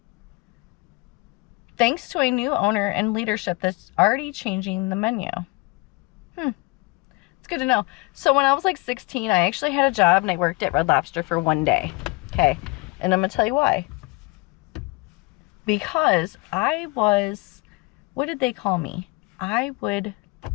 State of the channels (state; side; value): quieter; right; 26.4 dB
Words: thanks to a new owner and leadership that's already changing the menu. It's good to know. So when I was like 16, I actually had a job and I worked at Red Lobster for one day. Okay. And I'm going to tell you why. Because I was, what did they call me? I was